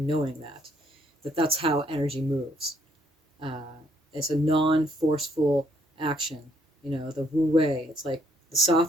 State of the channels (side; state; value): both; normal; correlation 0.69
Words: that's how energy moves. It's a non-forceful action. The Wu Wei. It's like the